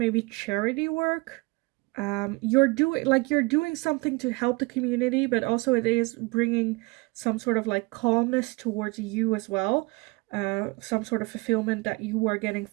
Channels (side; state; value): left; quieter; 26.6 dB